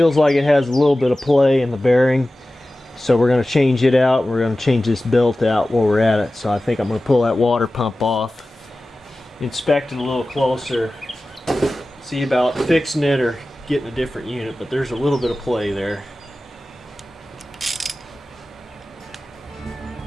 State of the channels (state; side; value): normal; both; correlation 0.96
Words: like it has a little bit of play in the bearing, so we're going to change it out. We're going to change this belt out while we're at it. So I think I'm going to pull that water pump off, inspect it a little closer, see about fixing it or getting a different unit, but there's a little bit of play there.